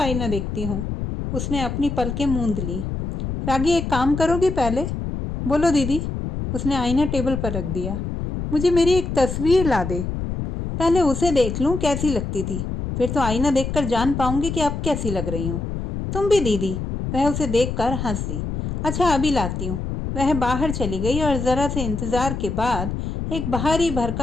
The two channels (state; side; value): noise; left; rumble, 4 dB below the sound